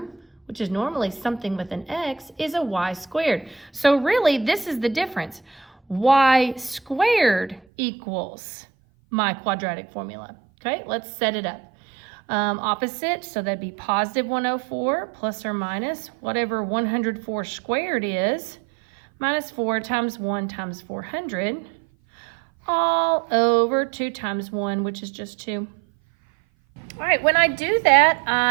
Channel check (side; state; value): left; drops out; at 7.6 s